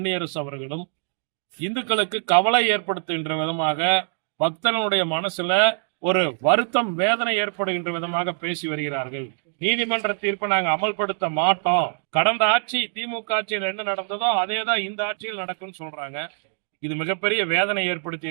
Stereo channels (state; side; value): silent; left; digital silence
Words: அவர்களும் இந்துக்களுக்கு கவலை ஏற்படுத்துகின்ற விதமாக, பக்தர்களுடைய மனசுல ஒரு வருத்தம், வேதனை ஏற்படுகின்ற விதமாக பேசி வருகிறார்கள். நீதிமன்ற தீர்ப்பை நாங்கள் அமல்படுத்த மாட்டோம், கடந்த ஆட்சி திமுக ஆட்சியில் என்ன நடந்ததோ அதே தான் இந்த ஆட்சியில் நடக்கும்னு சொல்றாங்க. இது மிகப்பெரிய வேதனை ஏற்படுத்தி